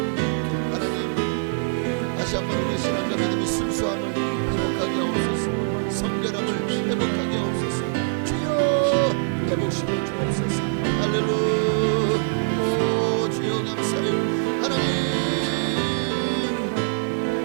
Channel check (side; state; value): left; silent; digital silence